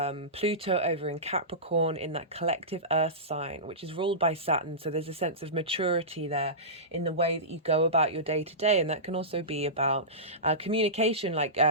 Pluto over in Capricorn in that collective earth sign, which is ruled by Saturn. So there's a sense of maturity there in the way that you go about your day to day. And that can also be about communication. Like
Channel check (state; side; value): normal; both; correlation -0.20